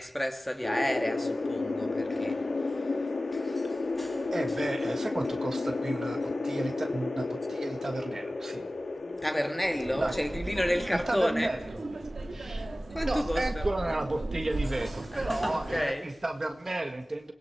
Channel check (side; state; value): both; normal; correlation 0.96